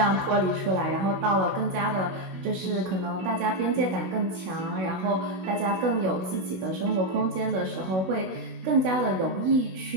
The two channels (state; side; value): late; left; 16 ms